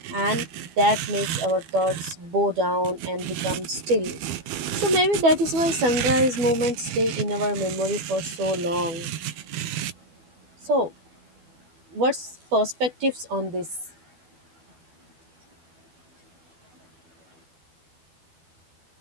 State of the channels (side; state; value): left; late; 12 ms